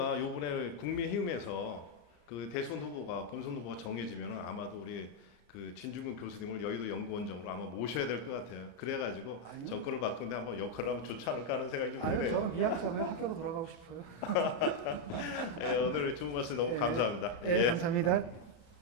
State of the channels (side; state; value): right; late; 34 ms